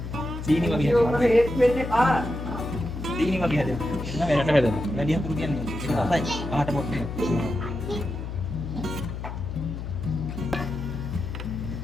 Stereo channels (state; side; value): noise; left; hum, 7 dB below the sound